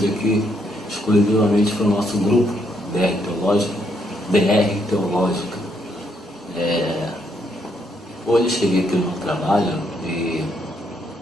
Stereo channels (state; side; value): normal; both; correlation 0.74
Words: aqui exclusivamente para o nosso grupo DR Teológica. Hoje eu cheguei aqui no trabalho e